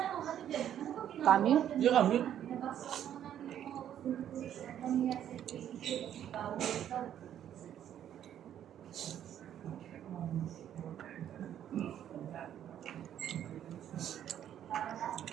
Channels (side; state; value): left; quieter; 10.4 dB